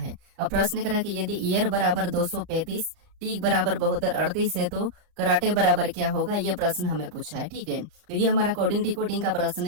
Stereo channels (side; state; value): left; late; 34 ms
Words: अब प्रश्न करा कि यदि ईयर बराबर 235 टीक बराबर 72 38 है तो कराटे बराबर क्या होगा, ये प्रश्न हमें पूछा है। ठीक है, तो ये हमारा कोडिंग डिकोडिंग का प्रश्न